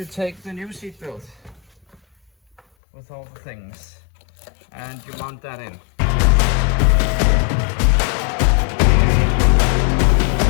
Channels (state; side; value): drops out; right; at 2.6 s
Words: take the new seat belt with all the things and you mount that in.